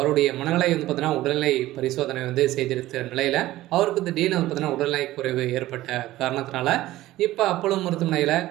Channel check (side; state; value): left; quieter; 16.0 dB